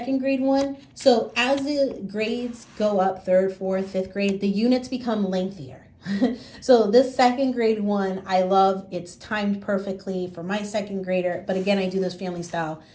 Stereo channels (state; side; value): identical; both; correlation 1.00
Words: grade one. So as the grades go up, 3rd, 4th, 5th grade, the units become lengthier. So this 2nd grade one, I love. It's timed perfectly for my 2nd grader. But again, I do this family style